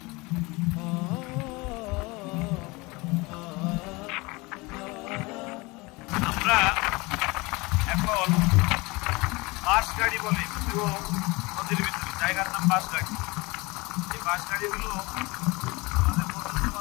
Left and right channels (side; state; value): right; quieter; 24.6 dB